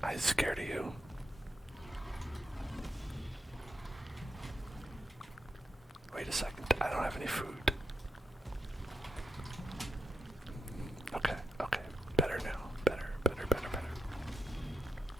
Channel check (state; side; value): normal; both; correlation 0.85